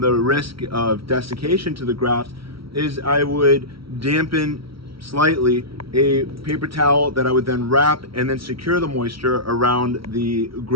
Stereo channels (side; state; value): left; late; 0.75 ms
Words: the risk of desiccation to the grafts is I would dampen slightly a paper towel that I would then wrap and then secure the moisture around the